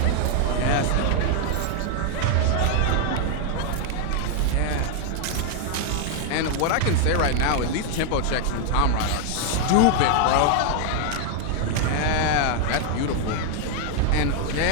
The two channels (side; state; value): both; different; correlation 0.00